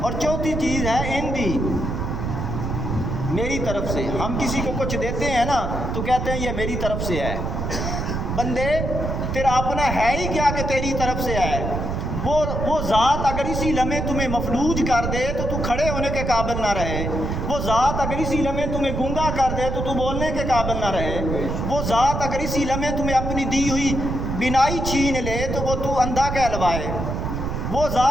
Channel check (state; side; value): noise; right; rumble, 2 dB below the sound